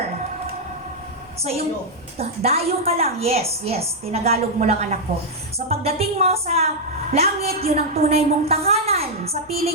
So yung dayo ka lang, yes, tinagalog mo lang anak ko. So pagdating mo sa langit, yun ang tunay mong tahanan sa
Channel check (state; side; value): normal; both; correlation -0.04